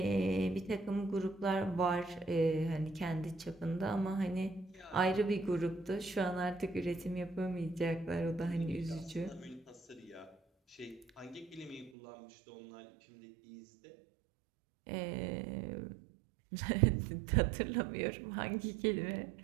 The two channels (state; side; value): drops out; left; at 11.9 s